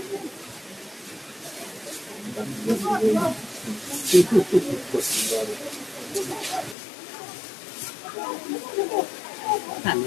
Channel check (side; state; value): right; drops out; at 6.8 s